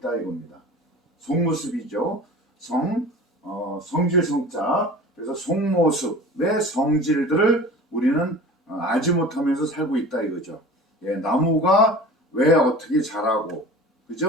이겁니다. 속모습이죠. 성질 성자. 그래서 속모습의 성질들을 우리는 알지 못하면서 살고 있다 이거죠. 예, 나무가 왜 어떻게 자라고,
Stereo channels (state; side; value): normal; both; correlation 0.39